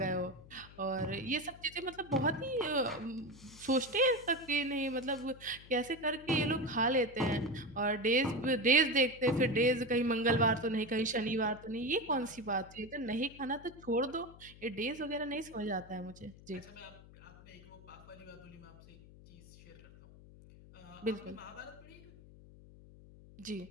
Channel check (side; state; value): left; noise; hum, 20 dB below the sound